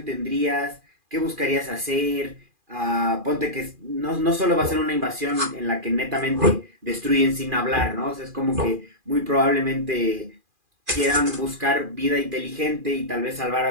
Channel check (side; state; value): left; late; 2.4 ms